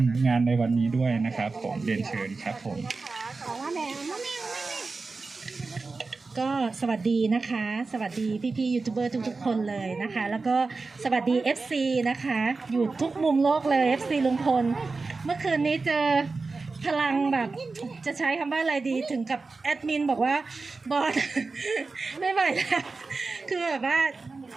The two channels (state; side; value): quieter; left; 4.0 dB